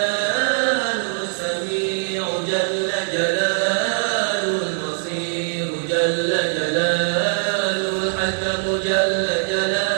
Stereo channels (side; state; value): left; silent; digital silence